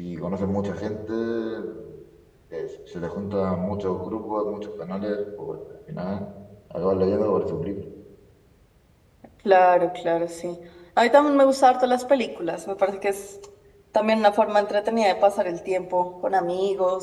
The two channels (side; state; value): both; identical; correlation 1.00